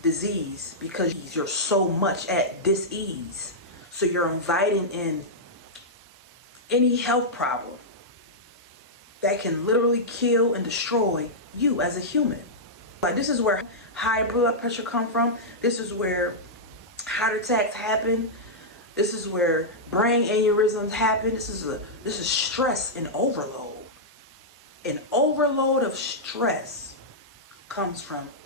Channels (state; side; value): normal; both; correlation -0.09